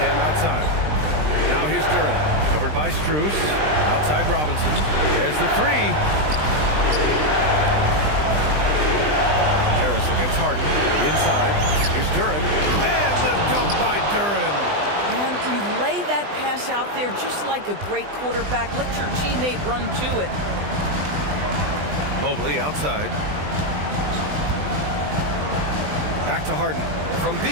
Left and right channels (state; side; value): late; left; 20 ms